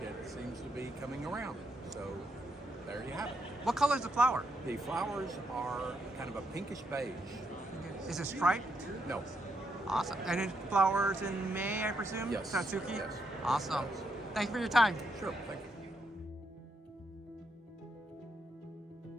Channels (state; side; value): normal; both; correlation 0.78